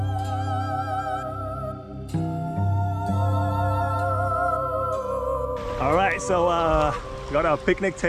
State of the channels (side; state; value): both; identical; correlation 1.00